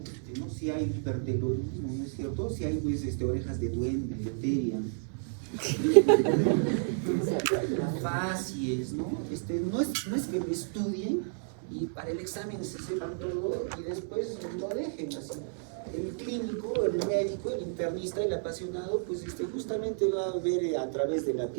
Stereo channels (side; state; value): left; silent; 57 dB below the other